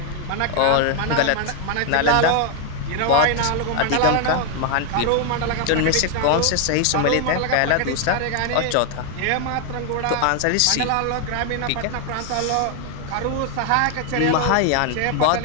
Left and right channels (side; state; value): both; different; correlation 0.00